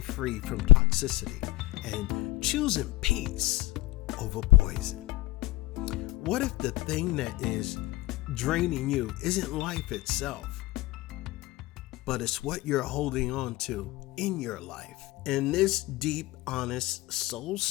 from toxicity and choosing peace over poison. What if the thing that is draining you isn't life itself, but it's what you're holding on to in your life? In this deep, honest,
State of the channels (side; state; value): right; quieter; 18.9 dB